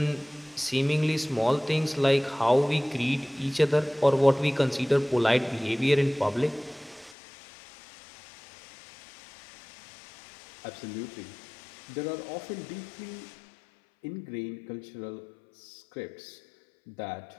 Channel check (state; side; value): drops out; right; at 7.2 s